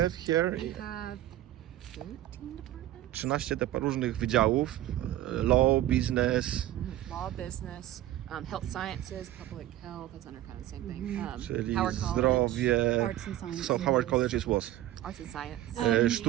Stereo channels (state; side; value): quieter; left; 13.9 dB